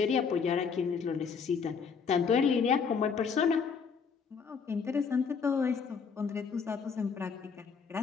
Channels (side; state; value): right; quieter; 5.9 dB